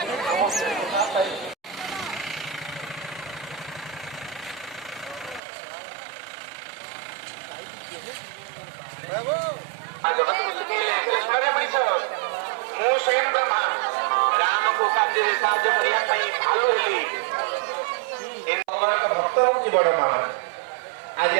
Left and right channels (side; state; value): left; drops out; at 5.4 s